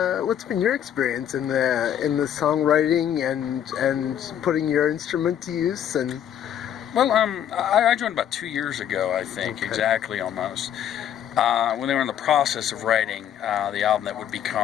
experience in the songwriting and putting your instrument to use? And Well, I joined about 2 years ago, I think, Okay. exactly almost. When they were in the process of writing the album that would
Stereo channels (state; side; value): quieter; right; 9.9 dB